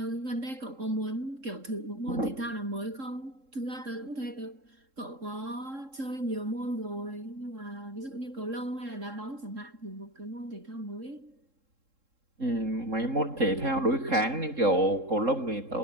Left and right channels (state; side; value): late; left; 3.7 ms